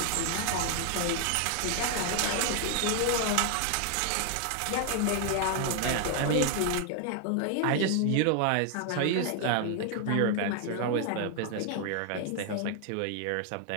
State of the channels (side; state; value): both; different; correlation 0.00